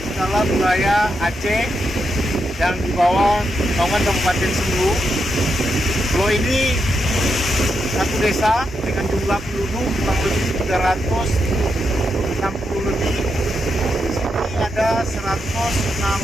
dalam wilayah Aceh yang di bawah naungan Kabupaten Sumedang. Pulau ini satu desa dengan jumlah penduduk kurang lebih 360 lebih. Di sini ada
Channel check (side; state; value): both; normal; correlation 0.83